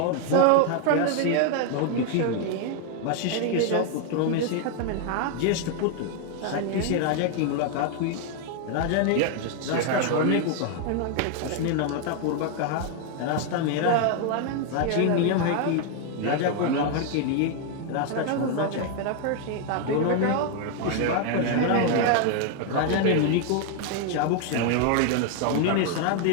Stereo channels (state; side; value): different; both; correlation 0.00